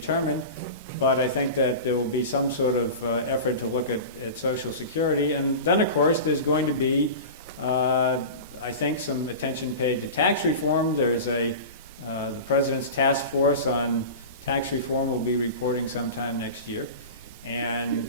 But I think that there will be some sort of effort to look at Social Security. And then, of course, there's going to be, I think, some attention paid to tax reform. There's the President's task force on tax reform will be reporting sometime next year. And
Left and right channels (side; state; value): both; inverted; correlation -0.30